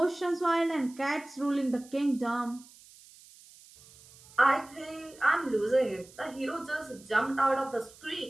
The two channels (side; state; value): right; noise; hiss, 23 dB below the sound